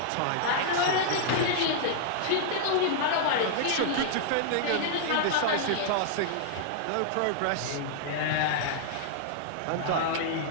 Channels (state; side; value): different; both; correlation -0.01